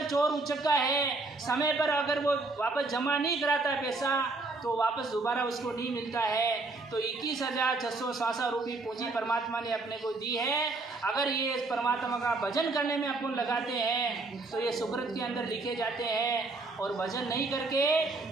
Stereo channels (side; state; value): left; quieter; 3.4 dB